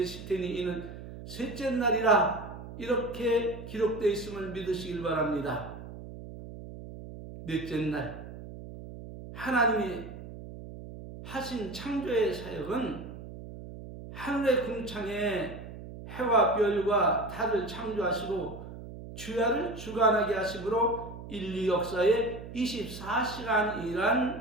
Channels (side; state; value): right; noise; hum, 12 dB below the sound